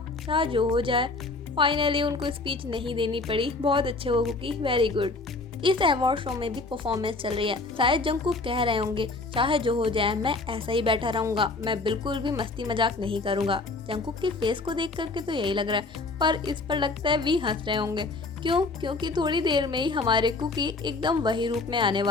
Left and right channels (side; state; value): right; quieter; 3.5 dB